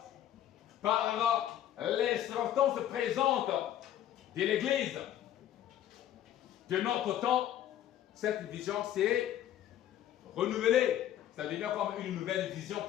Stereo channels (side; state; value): right; quieter; 11.6 dB